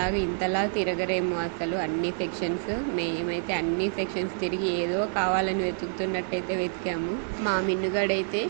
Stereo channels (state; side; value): silent; left; 60 dB below the other